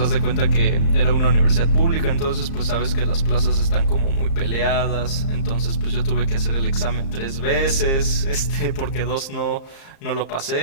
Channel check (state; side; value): late; right; 35 ms